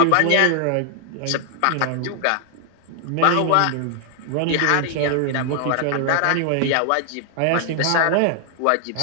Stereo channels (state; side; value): different; both; correlation 0.00